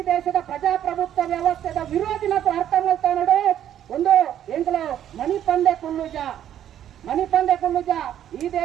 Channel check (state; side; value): quieter; left; 10.7 dB